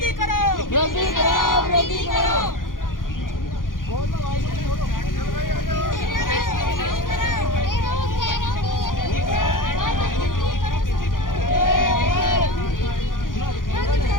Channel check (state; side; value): late; right; 0.90 ms